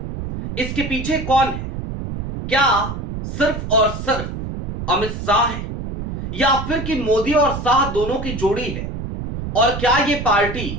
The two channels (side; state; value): right; noise; rumble, 6 dB below the sound